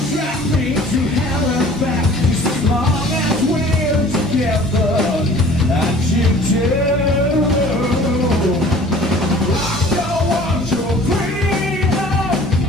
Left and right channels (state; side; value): normal; both; correlation 0.49